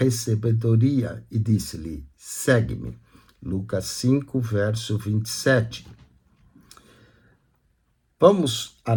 e disse-lhe: Segue-me. Lucas 5, verso 27. Vamos à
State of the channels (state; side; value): identical; both; correlation 1.00